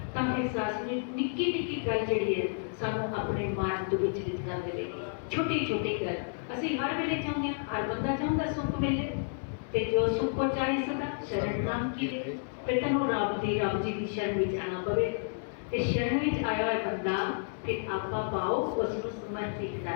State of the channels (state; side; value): silent; right; digital silence